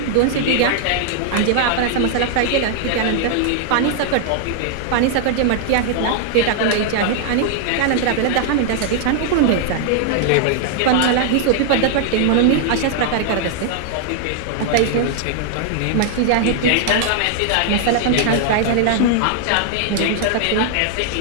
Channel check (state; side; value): different; both; correlation 0.00